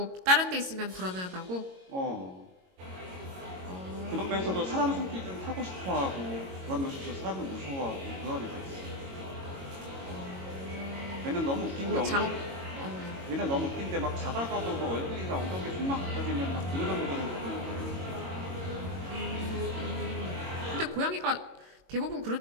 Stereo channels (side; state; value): left; late; 22 ms